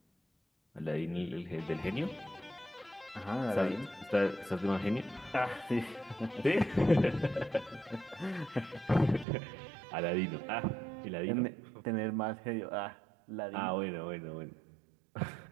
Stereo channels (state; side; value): drops out; left; at 9.2 s